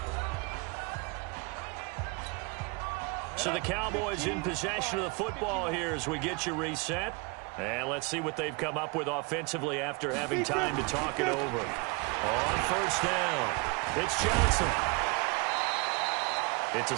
So the Cowboys in possession of the football here as we get you reset. And let's see what they've come up with offensively after having time to talk it over. On first down, it's Johnson. It's a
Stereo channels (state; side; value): quieter; left; 29.9 dB